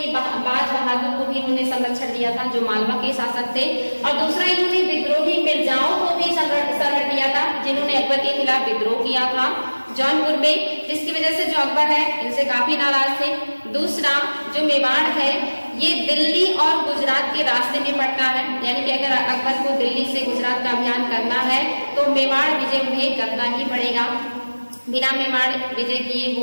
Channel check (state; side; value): inverted; both; correlation -1.00